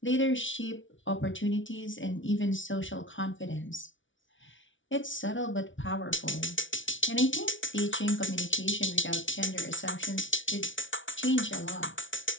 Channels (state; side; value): late; right; 0.56 ms